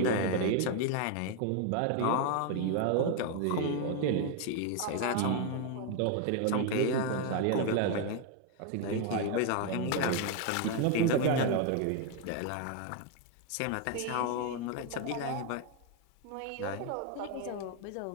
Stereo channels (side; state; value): both; different; correlation 0.01